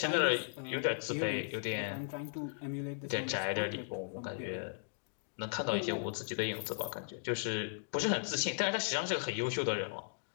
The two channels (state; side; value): silent; right; digital silence